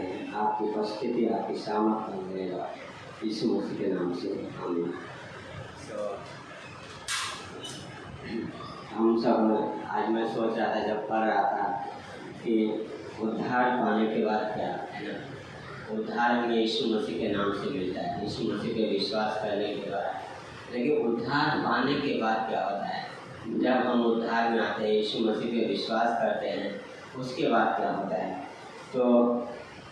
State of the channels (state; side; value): identical; both; correlation 1.00